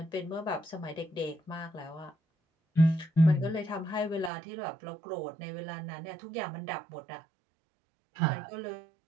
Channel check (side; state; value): left; drops out; at 4.3 s